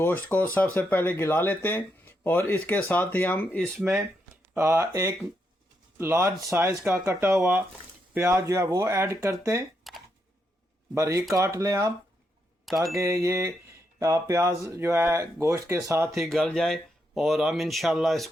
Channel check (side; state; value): both; normal; correlation 0.81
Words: को सबसे पहले गला लेते हैं और इसके साथ ही हम इसमें एक लार्ज साइज़ का कटा हुआ प्याज जो है वो ऐड करते हैं। बारीक काट लें आप ताकि ये प्याज जो है गोश्त के साथ ही गल जाए और हम इंशाल्लाह